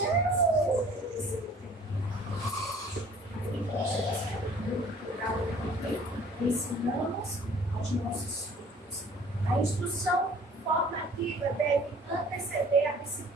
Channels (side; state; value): both; normal; correlation 0.52